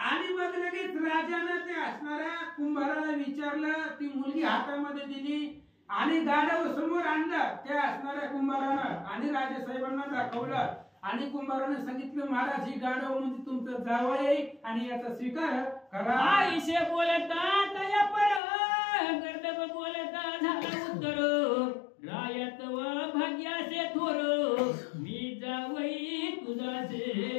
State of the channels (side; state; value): right; drops out; at 18.4 s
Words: मग लगेच राजानं ते असणाऱ्या कुंभाराला विचारलं, ती मुलगी हातामध्ये दिली आणि गाढव समोर आणलं त्या असणाऱ्या कुंभारानं आणि राजासाहेबांना दाखवलं आणि कुंभाराने सांगितलं महाराज ही गाढव म्हणजे तुमचं जावई आहे आणि याचा स्वीकार करा. आईशे बोलता तया पर गर्दब बोलता झाला उत्तर रायत व भाग्याचे थोर मी जावई तुझाचे.